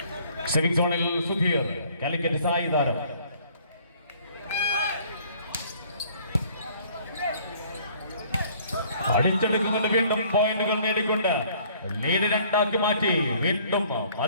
സെമിംഗ് സോണിൽ സുധീർ കാലിക്കറ്റ് സായി താരം. അടിച്ചെടുക്കുന്നുണ്ട്. വീണ്ടും പോയിന്റുകൾ നേടിക്കൊണ്ട് ലീഡ് 2 മാറ്റി. വീണ്ടും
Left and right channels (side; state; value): both; inverted; correlation -0.58